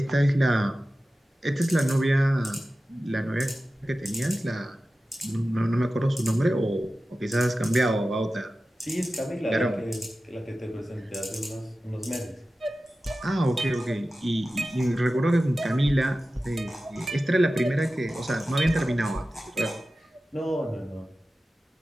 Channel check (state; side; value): normal; both; correlation 0.95